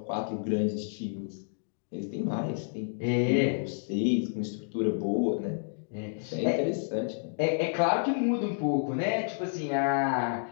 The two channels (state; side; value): silent; right; digital silence